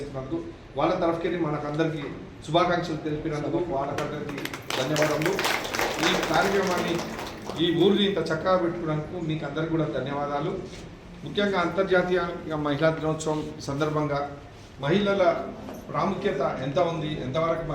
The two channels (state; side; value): identical; both; correlation 1.00